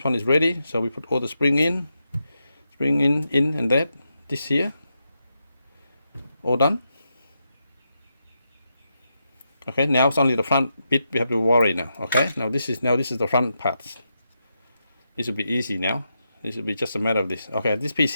one is ready, so we put all the spring in, and that, this here, all done. Okay, now it's only the front bit we have to worry now. Okay, now this is the front parts. This will be easy now. This will be just a matter of this. Okay, this piece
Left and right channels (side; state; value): both; inverted; correlation -0.85